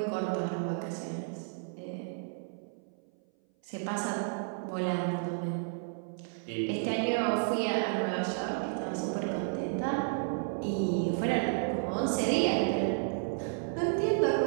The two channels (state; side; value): silent; left; 56 dB below the other